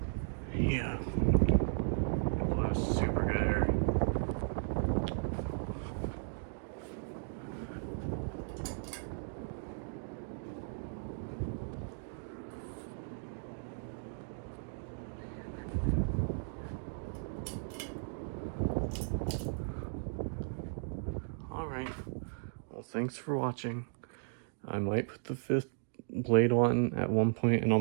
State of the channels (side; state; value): left; silent; digital silence